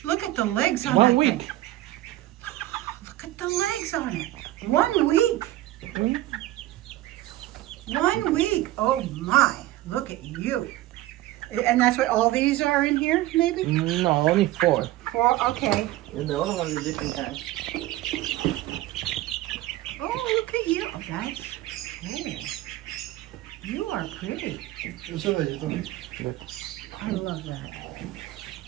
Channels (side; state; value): left; quieter; 16.2 dB